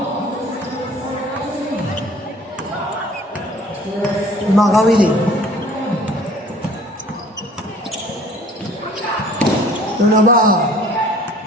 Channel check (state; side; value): normal; both; correlation 0.51